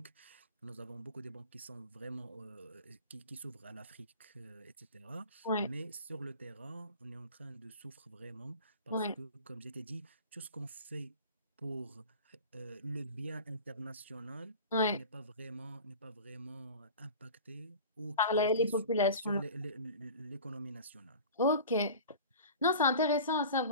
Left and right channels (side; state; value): both; inverted; correlation -0.38